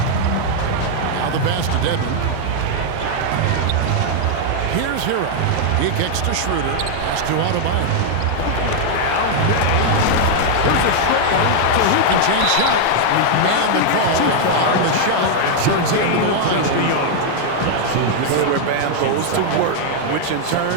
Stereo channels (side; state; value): both; different; correlation 0.00